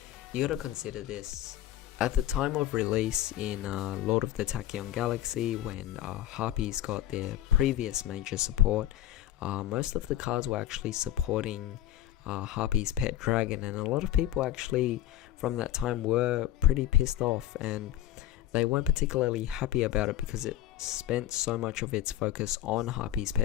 you gotta consider this. At the time of release in Lord of the Tachyon Galaxy, when Harpies got their previous major support, most of the cards were actually supporting Harpie's pet dragon, and a lot of people actually from that time were pretty pissed off and they weren't particularly happy about it because it spent so much of its focus on Harpie's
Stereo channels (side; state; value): right; quieter; 13.3 dB